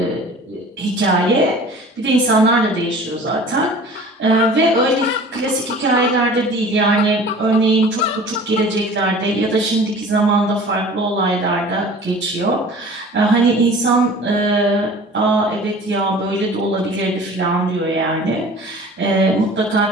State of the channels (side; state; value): both; normal; correlation 0.44